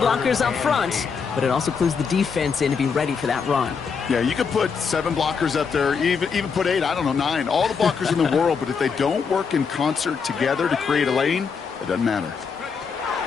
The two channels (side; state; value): right; quieter; 5.8 dB